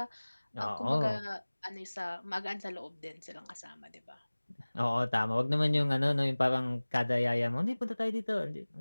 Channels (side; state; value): both; inverted; correlation -1.00